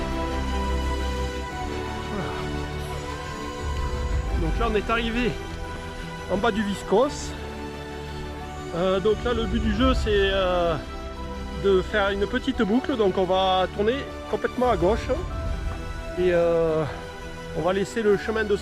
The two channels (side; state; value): both; identical; correlation 1.00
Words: Donc là on est arrivé en bas du Viscos. Donc là le but du jeu c'est de faire une petite boucle, donc on va tourner complètement à gauche et on va laisser le chemin de